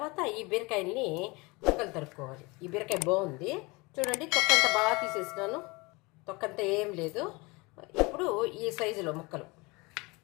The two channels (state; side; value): quieter; right; 25.3 dB